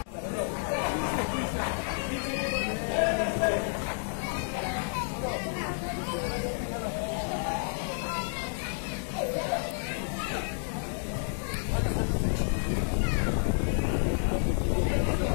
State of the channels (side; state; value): right; silent; 58 dB below the other